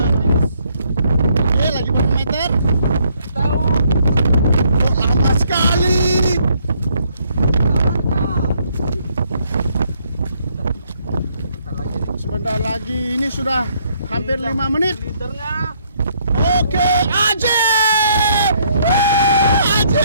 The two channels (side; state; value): both; inverted; correlation -0.69